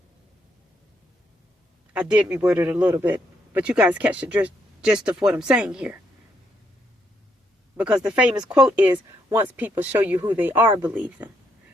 I did reword it a little bit, but you guys catch the gist of what I'm saying here. Because the famous quote is, once people show you who they are, believe them.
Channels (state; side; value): normal; both; correlation 0.75